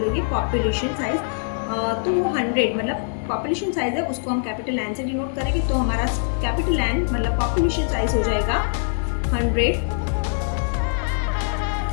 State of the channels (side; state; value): right; silent; digital silence